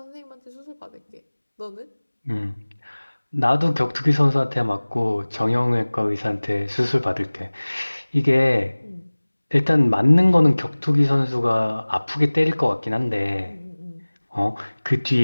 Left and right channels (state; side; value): inverted; both; correlation -1.00